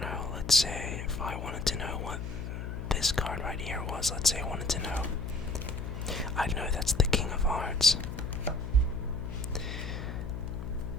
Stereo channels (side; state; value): left; noise; hum, 6 dB below the sound